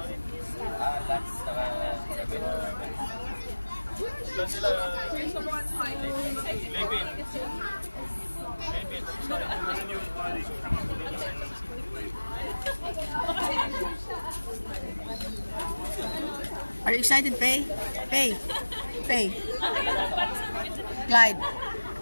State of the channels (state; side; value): inverted; both; correlation -1.00